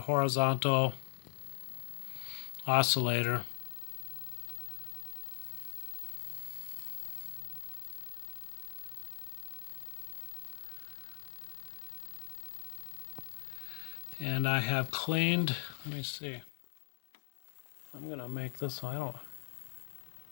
oscillator. And I have cleaned, let me see, I'm going to make this one, I don't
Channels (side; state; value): right; silent; digital silence